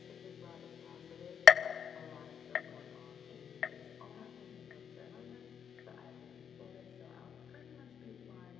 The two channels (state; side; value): quieter; right; 7.8 dB